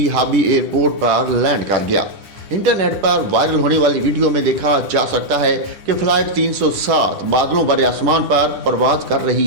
हाबी एयरपोर्ट पर लैंड कर गया। इंटरनेट पर वायरल होने वाली वीडियो में देखा जा सकता है कि फ्लाइट 307 बादलों भरे आसमान पर परवाज कर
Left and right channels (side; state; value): left; late; 10 ms